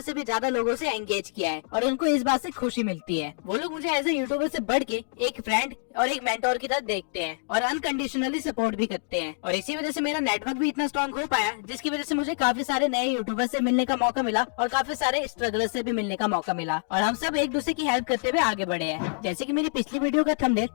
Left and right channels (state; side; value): silent; right; digital silence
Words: भी ज्यादा लोगों से एंगेज किया है और उनको इस बात से खुशी मिलती है। वो लोग मुझे एज ए यूट्यूबर से बढ़ के एक फ्रेंड और एक मेंटोर की तरह देखते हैं और अनकंडीशनली सपोर्ट भी करते हैं। और इसी वजह से मेरा नेटवर्क भी इतना स्ट्रॉन्ग हो पाया, जिसकी वजह से मुझे काफी सारे नए यूट्यूबर से मिलने का मौका मिला और काफी सारे स्ट्रगलर से भी मिलने का मौका मिला। और हम सब एक दूसरे की हेल्प करते हुए आगे बढ़े हैं। जैसे कि मेरी पिछली वीडियो का थंबनेल